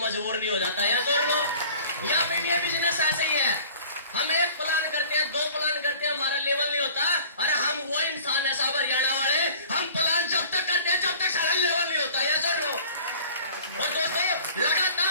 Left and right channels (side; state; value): both; inverted; correlation -0.47